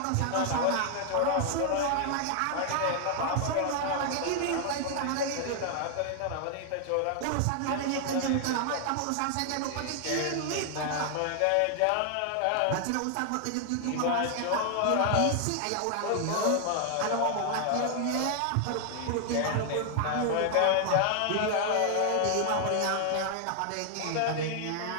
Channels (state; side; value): different; both; correlation 0.00